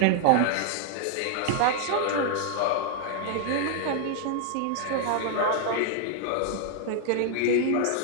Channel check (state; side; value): different; both; correlation 0.00